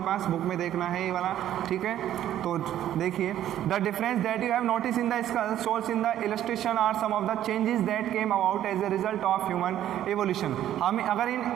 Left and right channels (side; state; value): left; quieter; 11.8 dB